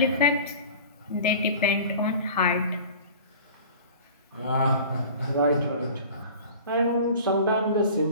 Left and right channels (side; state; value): both; inverted; correlation -0.40